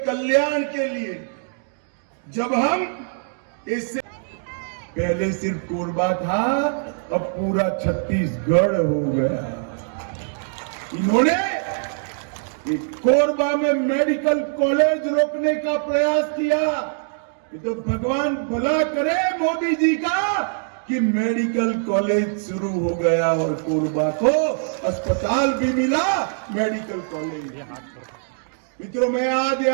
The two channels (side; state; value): left; silent; digital silence